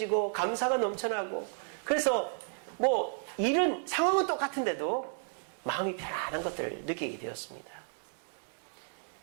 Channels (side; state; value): left; silent; 56 dB below the other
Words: 감사가 넘쳐나고 그래서 일은 상황은 똑같은데도 마음이 편안한 것들을 느끼게 되었습니다.